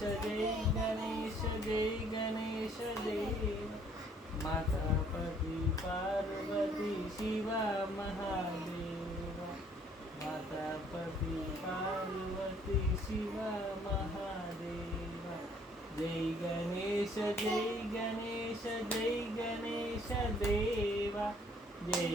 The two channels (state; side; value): normal; both; correlation 0.61